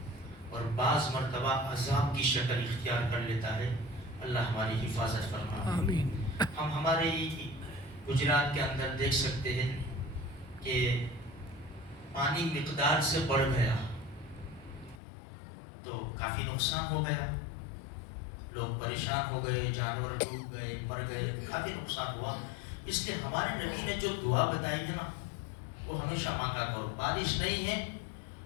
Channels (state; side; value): drops out; right; at 15.0 s